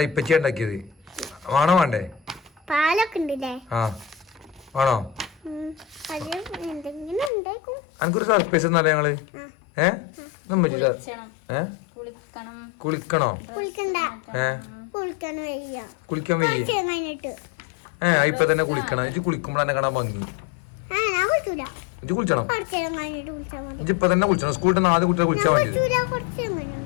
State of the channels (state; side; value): drops out; right; at 7.3 s